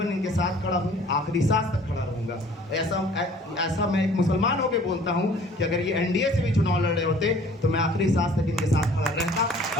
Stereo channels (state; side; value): normal; both; correlation 0.52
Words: इनके साथ खड़ा हूँ, आखिरी सांस तक खड़ा रहूँगा। ऐसा मैं एक मुसलमान होकर बोलता हूँ कि अगर ये एनडीए से भी चुनाव लड़ रहे होते तो मैं आखिरी सांस तक इनके साथ खड़ा रहता